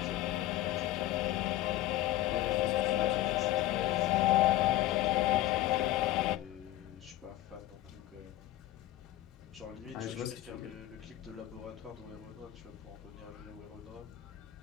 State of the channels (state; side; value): quieter; right; 14.8 dB